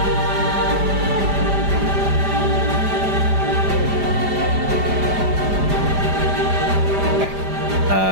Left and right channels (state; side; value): late; left; 5.0 ms